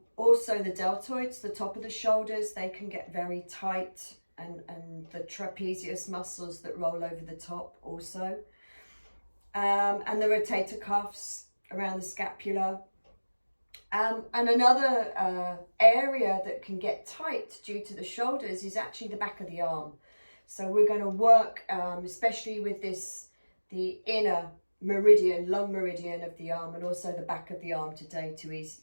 the deltoids, the top of the shoulders, they can get very tight, and the trapezius muscles that roll over the top also. And the rotator cuffs around the scapula. And another area that can get tight due to the shoulders is actually the back of the arm. So we're going to work, especially with the inner meridian, lung meridian of the arm, and also the back of the arm today to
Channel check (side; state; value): both; inverted; correlation -1.00